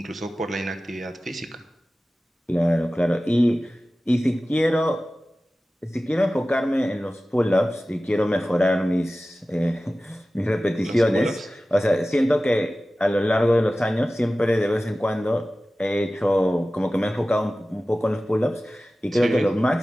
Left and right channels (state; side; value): normal; both; correlation 0.96